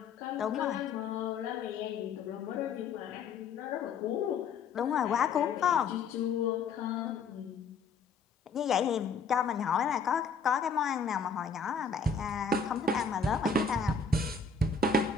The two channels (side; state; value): right; quieter; 5.0 dB